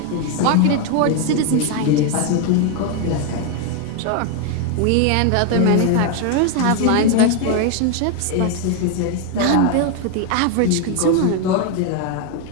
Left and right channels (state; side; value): different; both; correlation 0.01